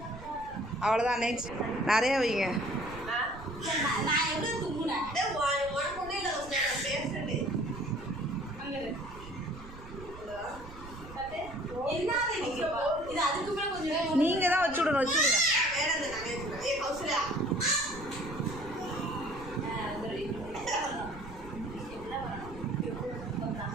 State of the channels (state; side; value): noise; right; rumble, 15 dB below the sound